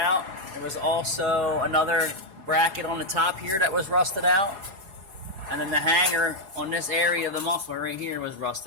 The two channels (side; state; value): left; late; 4.8 ms